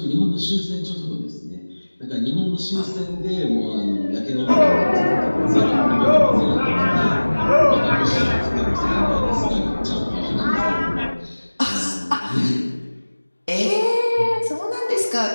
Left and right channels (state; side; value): inverted; both; correlation -1.00